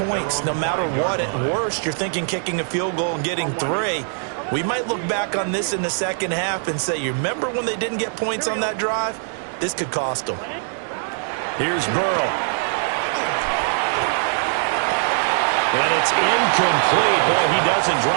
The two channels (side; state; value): left; silent; 61 dB below the other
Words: no matter what. At worst, you're thinking kicking a field goal and getting 3. We might look back on this in the second half and say, you remember when they didn't get points on that drive? This could cost them. Here's Burrow. And it's incomplete. Boy, he doesn't